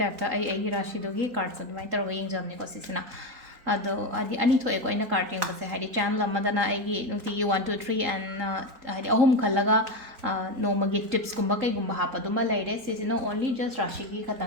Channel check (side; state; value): left; late; 3.8 ms